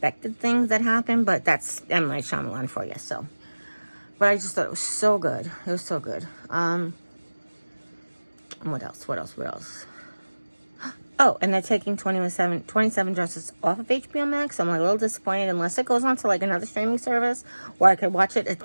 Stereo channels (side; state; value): both; inverted; correlation -1.00